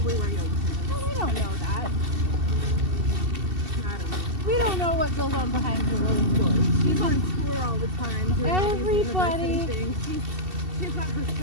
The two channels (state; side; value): late; left; 2.7 ms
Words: wear yoga pants. No, we don't know that. I don't know. We don't know what goes on behind closed doors. She's on tour all the time doing all these university things. She's got her